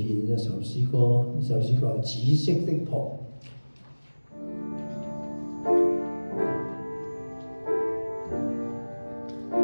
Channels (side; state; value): both; inverted; correlation -1.00